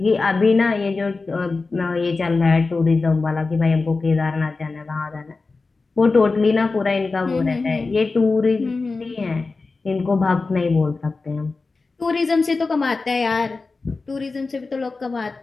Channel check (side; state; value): right; quieter; 3.9 dB